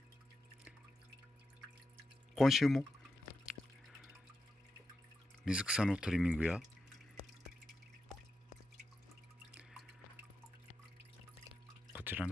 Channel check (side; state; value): both; normal; correlation 0.88